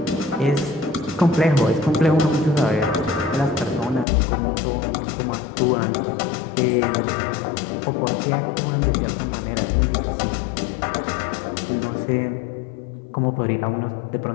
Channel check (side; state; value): right; drops out; at 4.0 s